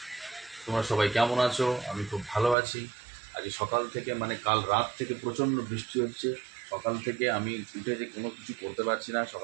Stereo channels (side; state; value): left; drops out; at 2.6 s